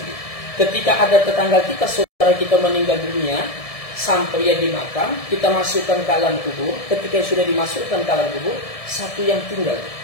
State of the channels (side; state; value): right; late; 1.7 ms